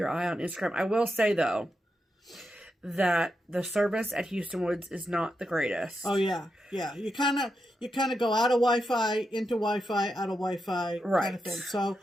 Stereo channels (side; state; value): both; normal; correlation 0.86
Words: eye on Instagram. I will say, though, that the service at Houston Woods is not the greatest. Oh yeah. You kind of go out of Wi-Fi, into Wi-Fi, out of Wi-Fi, kind of thing. So